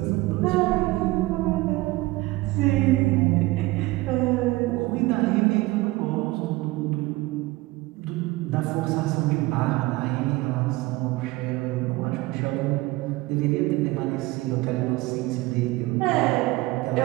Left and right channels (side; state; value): left; quieter; 20.3 dB